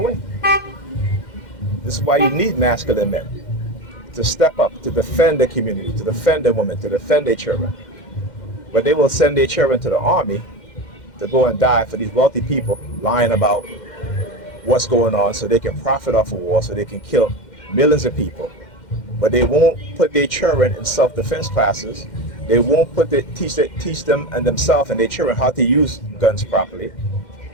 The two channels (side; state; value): right; late; 2.1 ms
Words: This is why you need masculine men to step up, to defend the community, to defend the women, to defend their children. But they will send their children to the army to go and die for these wealthy people lying about what's going on so they can profit off of war, so they can kill millions of people. But they won't put their children in self-defense classes. They won't teach them and themselves and their children how to use guns properly,